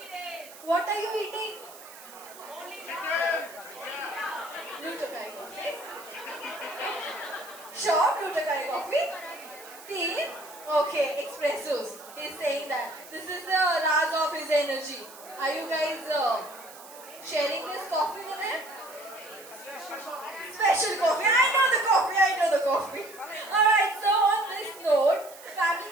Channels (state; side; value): noise; right; hiss, 18 dB below the sound